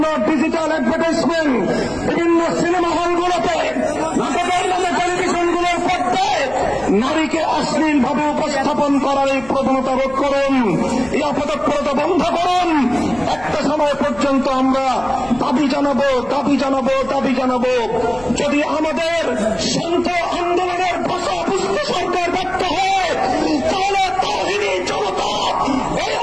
ডিজিটাল অ্যাডভার্টাইজমেন্ট, বিভিন্ন সিনেমা হলগুলোতে, নাটকের নামে টেলিভিশনগুলোর পর্দায় নারীকে অশ্লীলভাবে উপস্থাপন করার এই প্রবণতা রোধ করুন, এই অপতৎপরতা বন্ধ করুন। একটা সময় পর্যন্ত আমরা দাবি জানাবো, দাবি জানাবো, দাবি জানাবো। যদি আমাদের শান্ত আন্দোলনের ভাষা বুঝতে সরকার ব্যর্থ হয়, তাহলে তাওহীদি জনতা এই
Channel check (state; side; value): noise; left; rumble, 20 dB below the sound